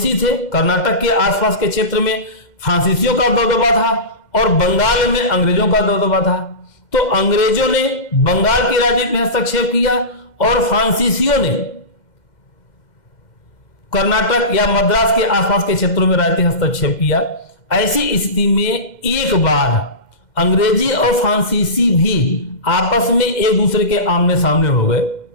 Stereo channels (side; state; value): right; late; 2.1 ms